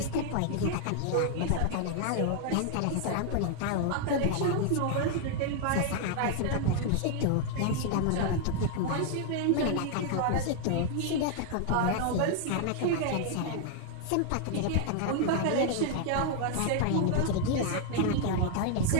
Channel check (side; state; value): both; different; correlation 0.00